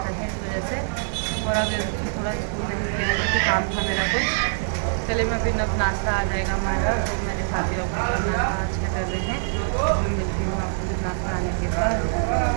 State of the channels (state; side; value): silent; left; digital silence